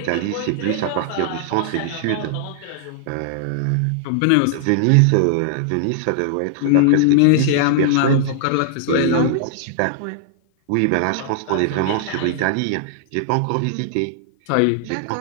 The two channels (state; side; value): different; both; correlation -0.01